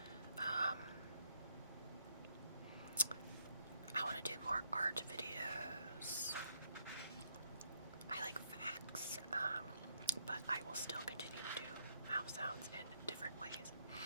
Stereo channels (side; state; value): both; inverted; correlation -0.72